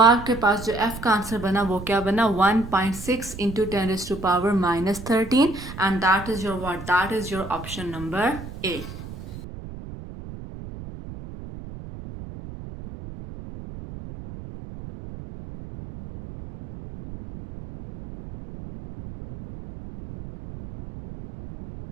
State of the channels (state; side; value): noise; right; rumble, 12 dB below the sound